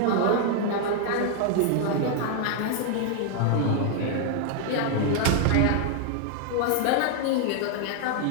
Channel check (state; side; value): different; both; correlation 0.00